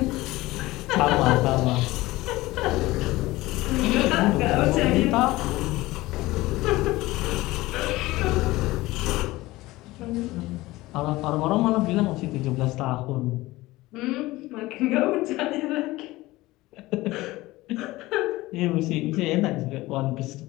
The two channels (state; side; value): quieter; right; 19.0 dB